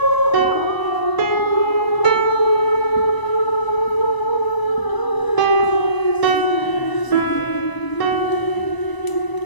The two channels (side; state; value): right; late; 1.0 ms